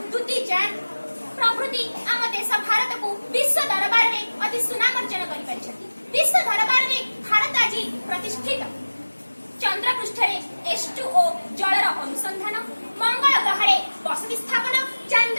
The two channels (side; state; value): both; inverted; correlation -1.00